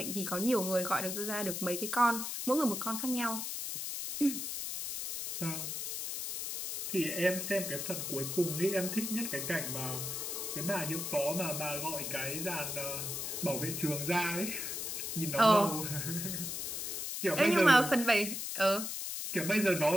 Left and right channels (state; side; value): noise; left; hiss, 4 dB below the sound